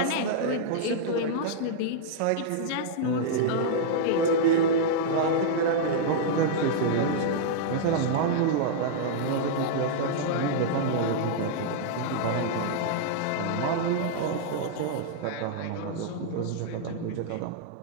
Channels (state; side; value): different; both; correlation -0.02